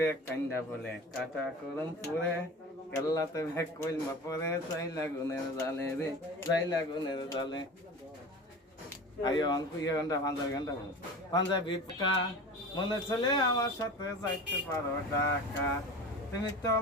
কান্দা বলে কাটা করম পুরে কেল্লাতে ভেক কইলমা পরে চাই লাগুনের জালে রে চাই লাগুনের জালে আইও অঙ্কু ইয়ে ঘন্টা পাঞ্জাবি পোকা মনে চলে আমার সাথে যাইতে পারো ঢাকা তুমি তো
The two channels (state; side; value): normal; both; correlation 0.34